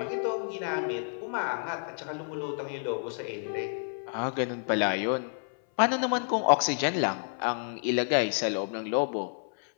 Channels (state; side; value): silent; right; 58 dB below the other